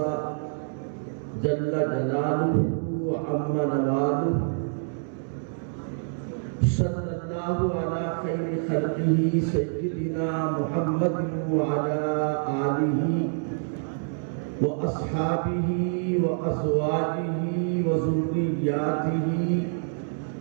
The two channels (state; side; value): silent; left; digital silence